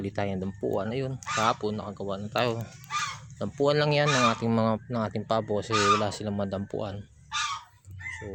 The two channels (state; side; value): identical; both; correlation 1.00